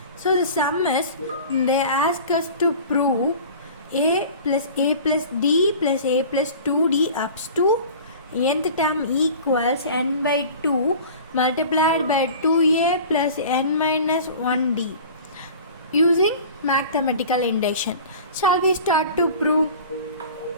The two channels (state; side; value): inverted; both; correlation -0.40